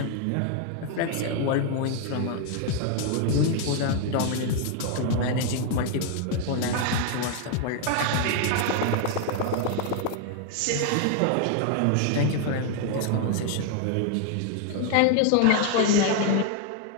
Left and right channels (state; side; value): different; both; correlation 0.00